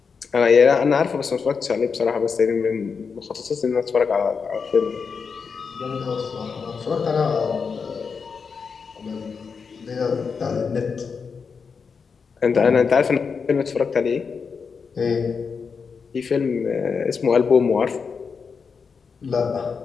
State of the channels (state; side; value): quieter; right; 5.6 dB